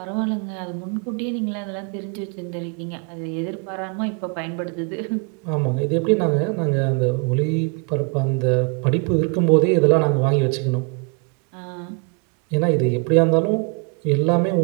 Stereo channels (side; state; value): left; quieter; 33.3 dB